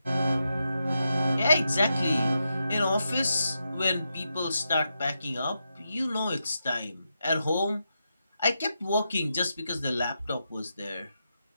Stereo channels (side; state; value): both; inverted; correlation -0.86